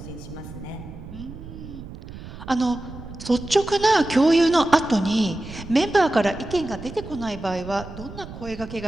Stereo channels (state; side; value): noise; right; rumble, 13 dB below the sound